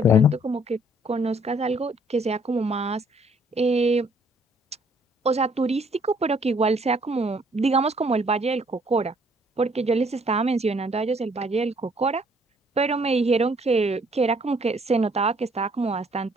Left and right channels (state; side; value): normal; both; correlation 0.63